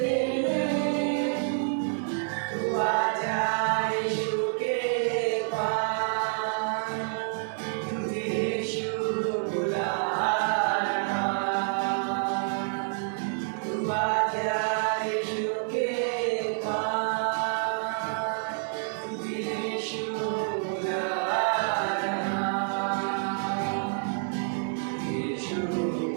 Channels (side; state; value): left; silent; 59 dB below the other